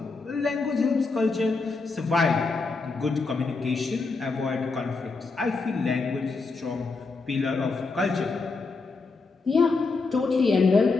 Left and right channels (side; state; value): right; quieter; 4.1 dB